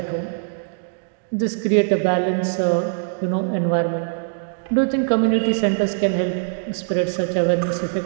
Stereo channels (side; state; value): left; silent; digital silence